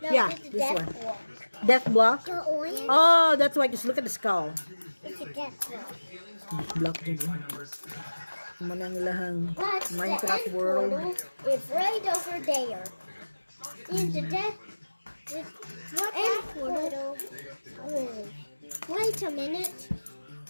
No, Yeah, it's a this death one. block. Death block. The orange. Oh, that's why. Just look at the skull. It's a death block. Block din. Manang lahang But the Minecraft end world. portal is right over there. In the death. What end portal? Wait a minute.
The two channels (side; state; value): both; inverted; correlation -1.00